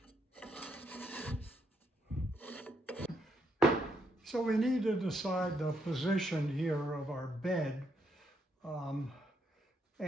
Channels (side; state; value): both; normal; correlation 0.76